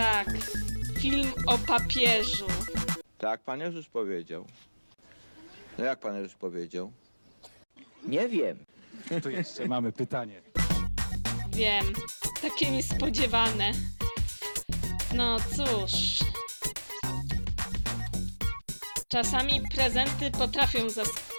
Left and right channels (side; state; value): both; inverted; correlation -1.00